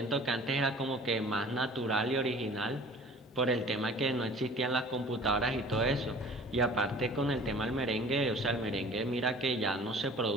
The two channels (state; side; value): normal; both; correlation 0.46